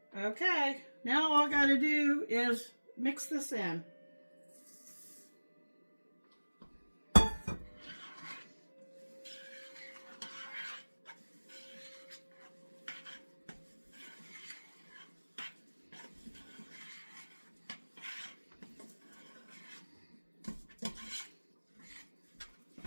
Okay, now all I got to do is mix this in.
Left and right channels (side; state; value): both; inverted; correlation -1.00